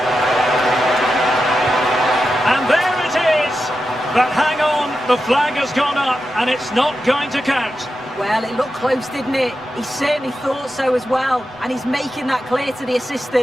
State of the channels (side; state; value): both; normal; correlation 0.89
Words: And there it is! But hang on, the flag has gone up, and it's not going to count. Well, it looked close, didn't it? He certainly thought so as well, and he's making that clear to the